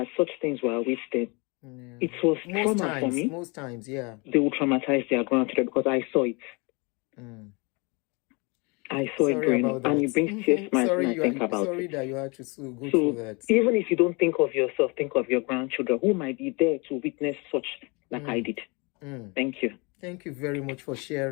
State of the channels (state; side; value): quieter; right; 29.1 dB